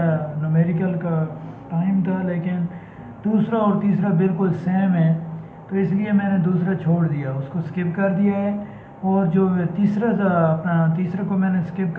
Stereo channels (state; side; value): identical; both; correlation 1.00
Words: न्यूमेरिकल का टाइम था, लेकिन दूसरा और तीसरा बिल्कुल सेम है, तो इसलिए मैंने दूसरा छोड़ दिया, उसको स्किप कर दिया है। और जो तीसरा था अपना, तीसरे को मैंने स्किप